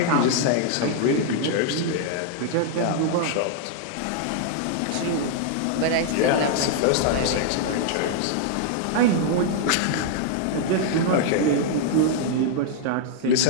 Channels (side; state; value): both; different; correlation -0.01